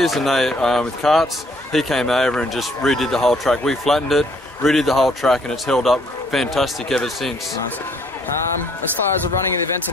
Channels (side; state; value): both; normal; correlation 0.64